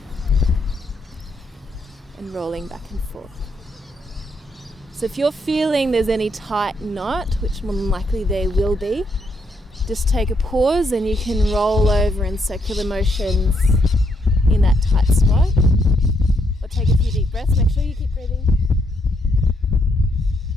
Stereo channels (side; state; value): both; normal; correlation 0.76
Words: And rolling back and forth. So if you're feeling there's any tight knot, which more than likely there will be, just take a pause and you can roll over in circular motions in that tight spot. Or take a few deep breaths. Make sure you keep breathing.